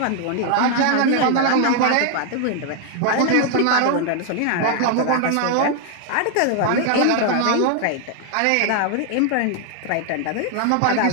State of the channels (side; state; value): both; different; correlation 0.00